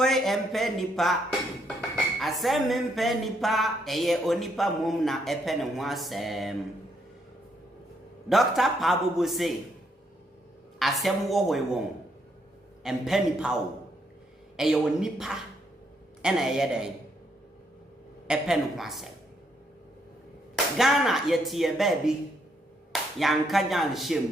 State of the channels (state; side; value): normal; both; correlation 0.74